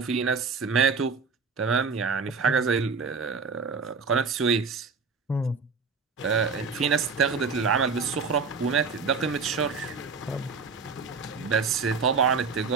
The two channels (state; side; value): quieter; left; 4.9 dB